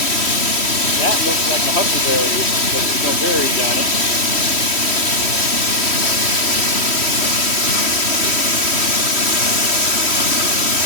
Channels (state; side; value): late; right; 3.1 ms